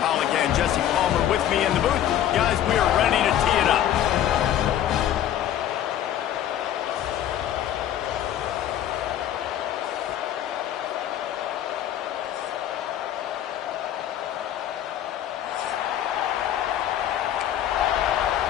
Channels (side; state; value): right; quieter; 11.2 dB